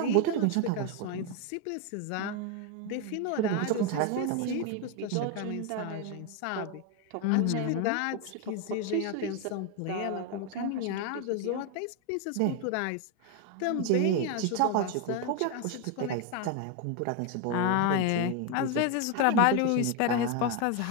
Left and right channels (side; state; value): both; different; correlation 0.01